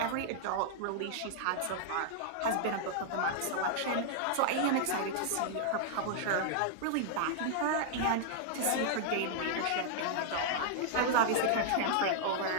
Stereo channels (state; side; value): different; both; correlation -0.01